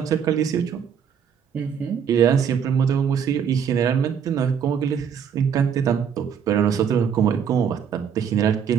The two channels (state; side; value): quieter; left; 7.6 dB